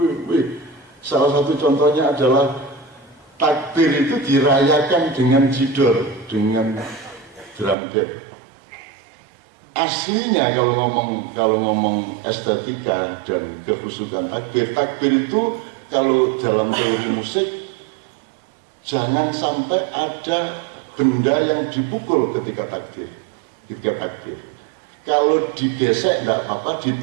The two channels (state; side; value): drops out; left; at 7.8 s